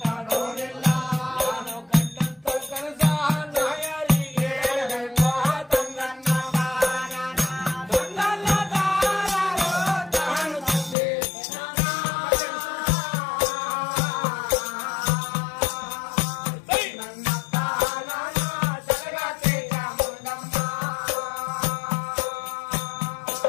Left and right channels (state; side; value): drops out; right; at 11.0 s